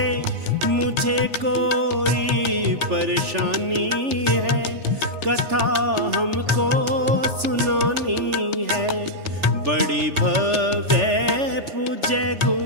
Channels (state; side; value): late; left; 3.4 ms